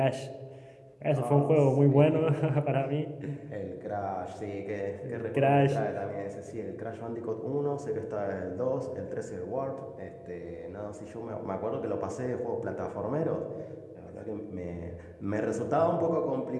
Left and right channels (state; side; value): identical; both; correlation 1.00